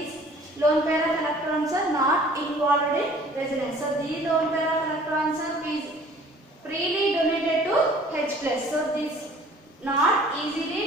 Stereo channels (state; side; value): normal; both; correlation 0.51